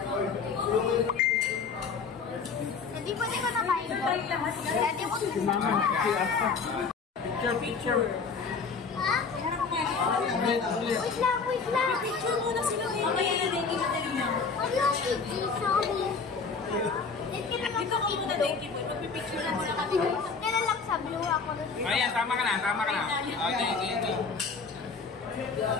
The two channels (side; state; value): right; quieter; 5.1 dB